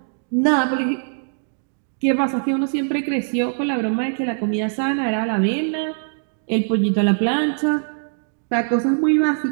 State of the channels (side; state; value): left; silent; 64 dB below the other